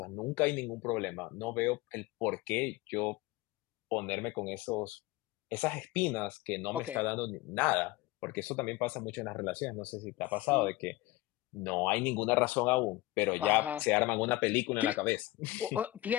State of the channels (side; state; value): right; quieter; 18.6 dB